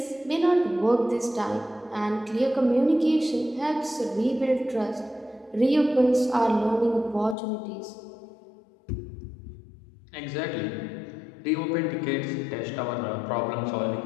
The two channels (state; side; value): drops out; right; at 7.4 s